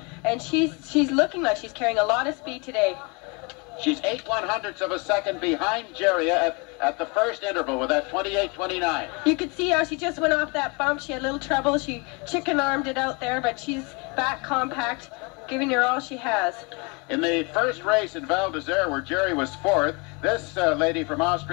and she's looking like she's carrying a lot of speed today. She's 8/100ths of a second behind Jerry at the first interval with that 28:29. You could see how she just went off that bump. She had a little trouble. She chicken-armed it out there, but she's back compact, giving her all she has. In the first race in Val d'Isère, where Jerry was fourth, this lady from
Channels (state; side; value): quieter; right; 30.6 dB